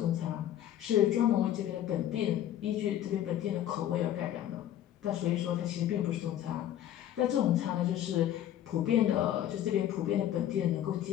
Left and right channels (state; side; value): quieter; right; 11.6 dB